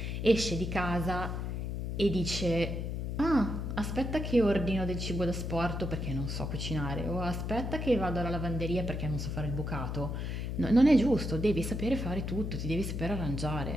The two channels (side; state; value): left; noise; hum, 3 dB below the sound